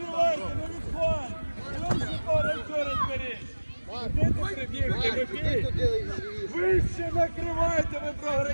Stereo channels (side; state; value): both; inverted; correlation -1.00